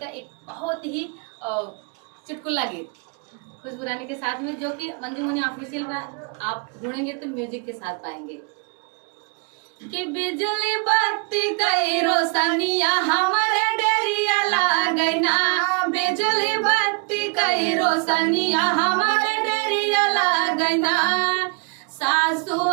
एक बहुत ही चुटकुला गीत खुशबू रानी के साथ में, जो कि मंजू मनी ऑफिशियल में आप ढूंढेंगे तो म्यूजिक के साथ पाएंगे। कि बिजली बत्ती कई रोशनिया हमारे डेरिया लागना, बिजली बत्ती कई रोशनिया हमारे डेरिया लागना। सासु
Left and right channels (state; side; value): quieter; left; 34.1 dB